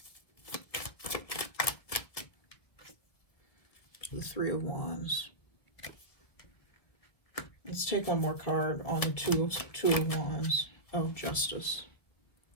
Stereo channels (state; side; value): late; right; 1.8 ms